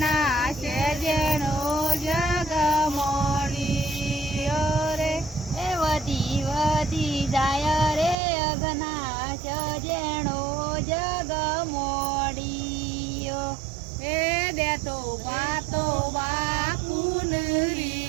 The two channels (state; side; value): drops out; left; at 8.2 s